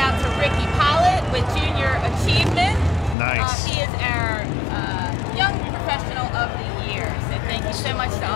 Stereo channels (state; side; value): drops out; right; at 3.2 s